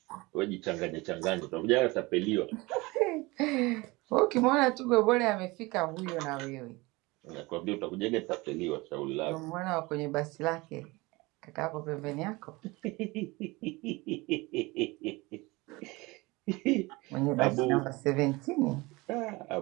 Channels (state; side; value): quieter; left; 23.0 dB